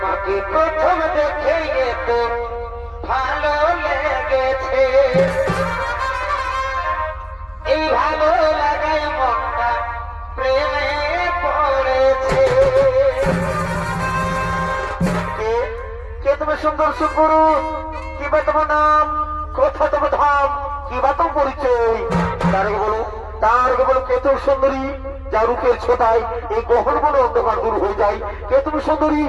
প্রথম দেখে তো ভালো লেগেছে, এই ভালো লাগায় মনটা প্রেমে পড়েছে। কে তুমি সুন্দর সুপুরুষ? কিবা তোমার নাম, কোথা তোমার ধাম, কিবা তোমার পরিচয়? তার আগে বলো কে তুমি সুন্দরী, যা রূপের ছোটায় এই গহন বলে অন্ধকার দূর হয়ে যায়? কে তুমি সুন্দরী?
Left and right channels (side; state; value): both; identical; correlation 1.00